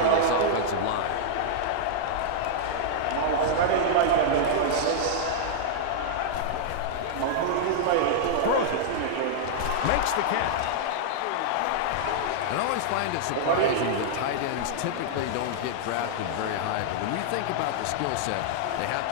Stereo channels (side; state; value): both; different; correlation -0.02